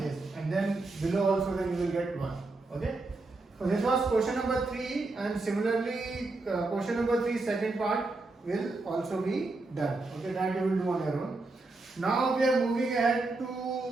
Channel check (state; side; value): quieter; left; 3.3 dB